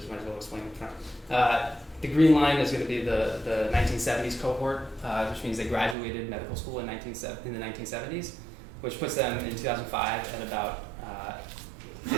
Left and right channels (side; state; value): left; drops out; at 6.0 s